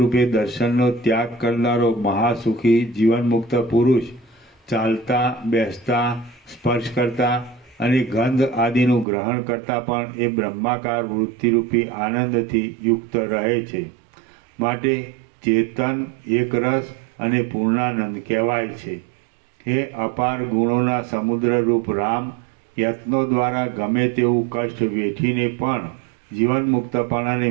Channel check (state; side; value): drops out; left; at 9.1 s